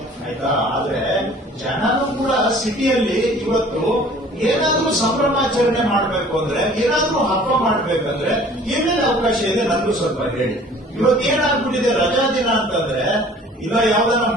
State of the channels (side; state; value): both; normal; correlation 0.50